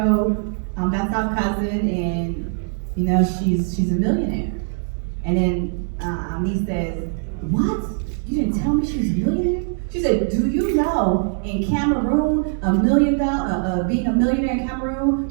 that's our cousin, and you know she's a millionaire. And then niece says, what? You didn't tell me she's a millionaire? She said, do you know in Cameroon, being a millionaire in Cameroon,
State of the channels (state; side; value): silent; left; 64 dB below the other